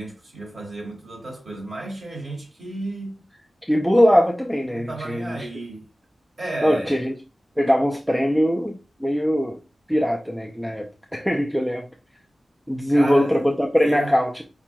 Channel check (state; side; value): normal; both; correlation 0.97